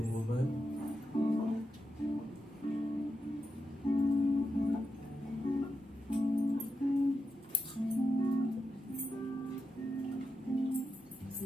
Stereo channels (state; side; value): normal; both; correlation 0.87